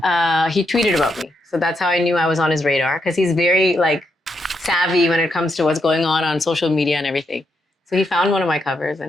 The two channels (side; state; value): both; normal; correlation 0.81